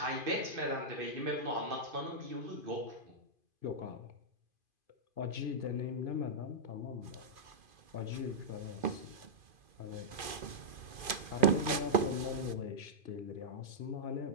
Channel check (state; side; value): late; left; 2.5 ms